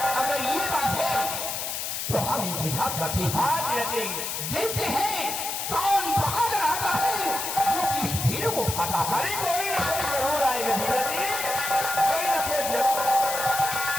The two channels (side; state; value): left; noise; hiss, 3 dB below the sound